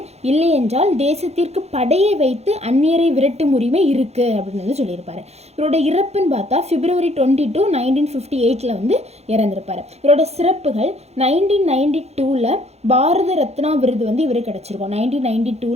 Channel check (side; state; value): left; late; 0.31 ms